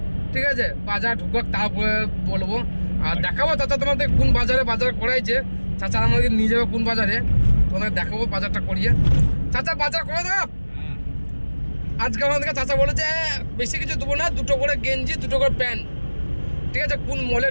ঠিক আছে? বাজার ঢুকাক তারপরে বলবো, আর দেখাবো চাচা তোমাদের কোন বাজারে বাজার করাইছে। চাচা আমাদের নিয়ে যাবে কোন বাজারে, তোমাদের দেখাবো বাজারটা করিয়ে। চাচা বাজার করে দেব আজকে আমাদেরকে। চাচা বলেছে বেশি কিছু দেবো না, 2টো করে গেঞ্জি 2টো করে প্যান্ট, ঠিক আছে? কোন মলে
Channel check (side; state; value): both; inverted; correlation -1.00